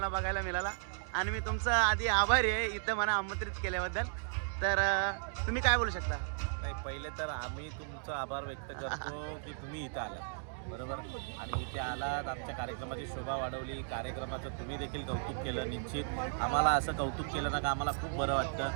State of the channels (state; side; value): silent; left; digital silence